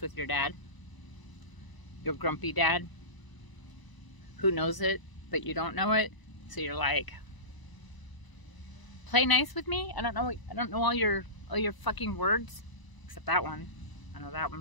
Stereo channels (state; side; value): late; right; 1.0 ms